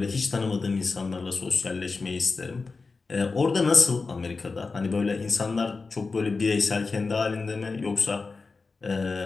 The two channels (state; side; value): quieter; right; 4.2 dB